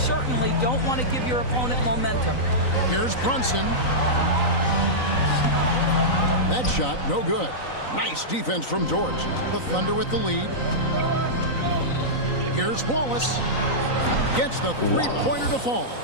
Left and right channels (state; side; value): late; right; 3.9 ms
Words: don't want to give your opponent momentum. Here's Brunson. That shot, no good. Nice defense from George. The Thunder with the lead. Here's Wallace. Gets the three-pointer to fall.